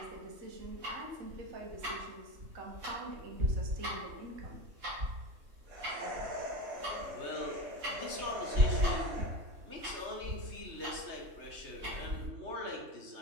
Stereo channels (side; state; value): left; late; 3.2 ms